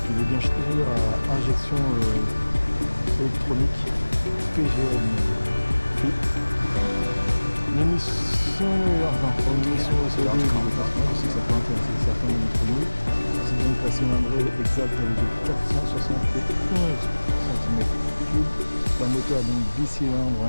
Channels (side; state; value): both; inverted; correlation -1.00